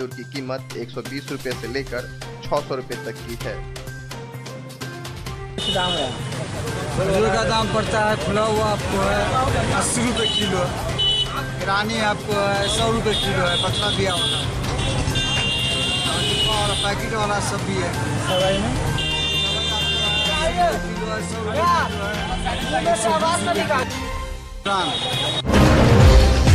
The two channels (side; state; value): both; identical; correlation 1.00